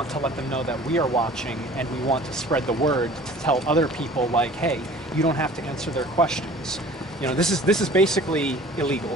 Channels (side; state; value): both; normal; correlation 0.47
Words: to let them know that we are watching, and we want to spread the word to tell other people, like, hey, you don't have to answer their questions. You know, this is basically